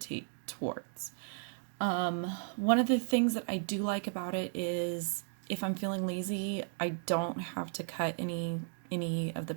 towards. One of the things that I do like about it is if I'm feeling lazy, I don't have to cut any of the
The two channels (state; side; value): silent; left; digital silence